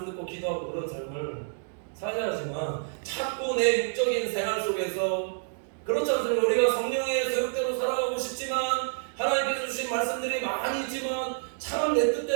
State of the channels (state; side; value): silent; left; digital silence